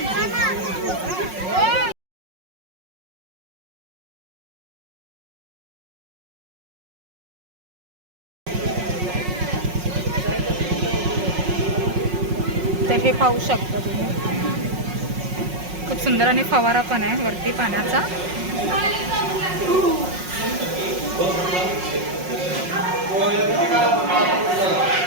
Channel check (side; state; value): left; late; 5.5 ms